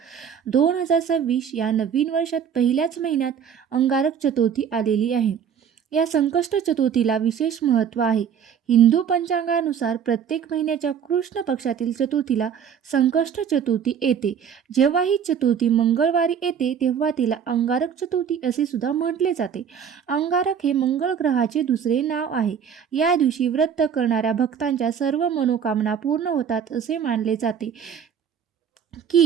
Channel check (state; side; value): quieter; left; 7.8 dB